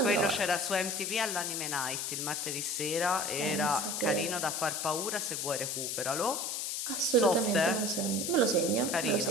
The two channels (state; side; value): noise; left; hiss, 2 dB below the sound